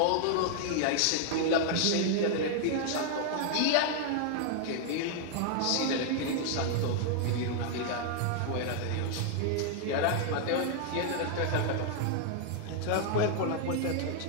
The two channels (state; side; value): different; both; correlation 0.00